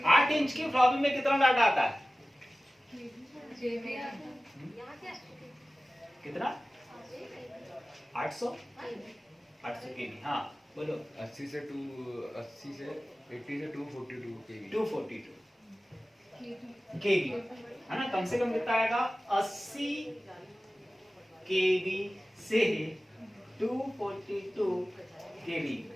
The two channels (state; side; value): normal; both; correlation 0.96